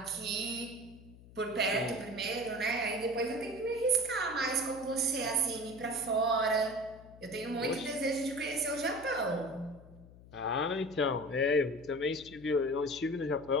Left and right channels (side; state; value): left; noise; hum, 20 dB below the sound